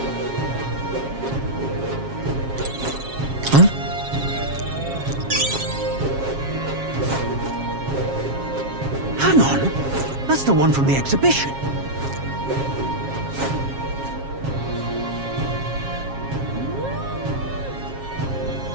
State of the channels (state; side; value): late; left; 7.4 ms